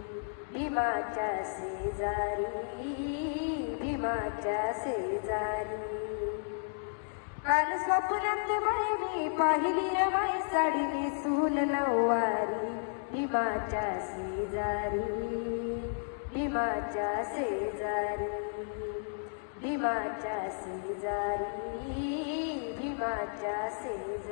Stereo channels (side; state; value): right; silent; digital silence